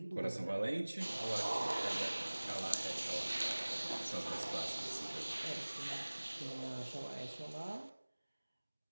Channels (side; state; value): both; inverted; correlation -1.00